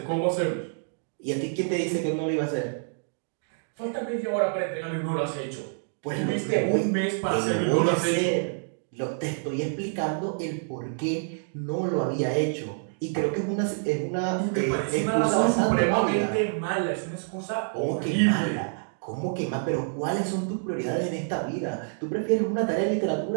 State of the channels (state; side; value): silent; left; digital silence